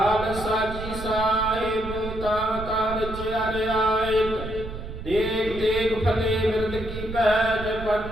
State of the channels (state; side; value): noise; right; rumble, 9 dB below the sound